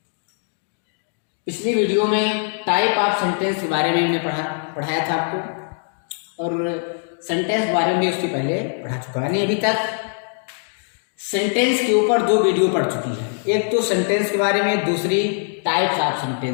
पिछली वीडियो में टाइप ऑफ सेंटेंस के बारे में हमने पढ़ाया था आपको, और सेंटेंस के बारे में उसके पहले पढ़ा चुका है। अभी तक सेंटेंस के ऊपर 2 वीडियो पढ़ चुकी है। एक तो सेंटेंस के बारे में, दूसरी टाइप्स ऑफ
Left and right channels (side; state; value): right; silent; 57 dB below the other